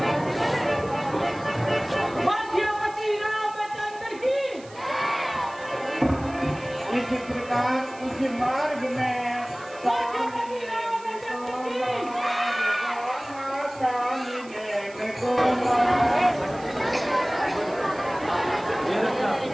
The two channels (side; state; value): right; noise; hiss, 22 dB below the sound